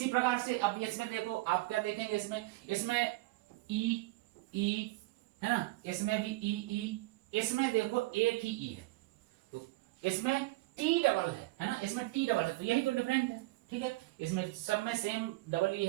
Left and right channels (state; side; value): quieter; left; 20.5 dB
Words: प्रकार से अब इसमें देखो, आप क्या देखेंगे, इसमें ई है ना, इसमें भी ई, इसमें देखो एक ही ई है, तो इसमें टी डबल है ना, इसमें टी डबल है, तो यही तो डिफरेंट है। ठीक है, इसमें सब में सेम डबल ई